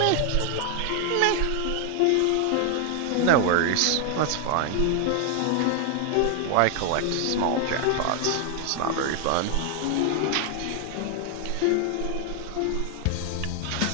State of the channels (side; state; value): both; different; correlation 0.00